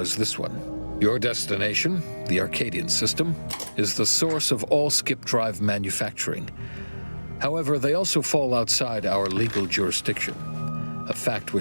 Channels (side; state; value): both; inverted; correlation -1.00